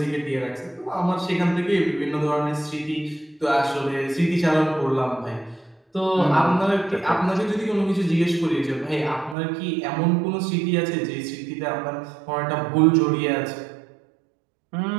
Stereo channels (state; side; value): drops out; left; at 9.3 s